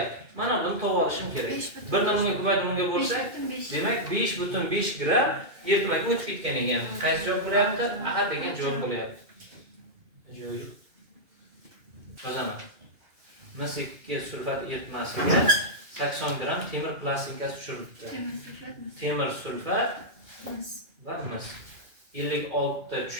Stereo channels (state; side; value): late; left; 2.5 ms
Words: Mana buni topib olishim kerak. Birdan bunga ko'paytirib bunga bo'lsa, demak 5.5 gram eritmaga o'tib ketgan ekan. Qaysi javob bo'lyapti? A degan javob bo'lyapti. Yozaman. Mis sulfat eritmasiga 80 gram temir plastinkasi tushirilibdi. Temir sulfat va mis. 56 ta